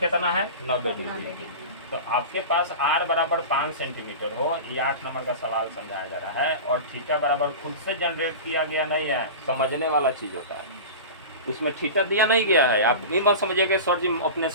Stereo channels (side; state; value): both; inverted; correlation -0.30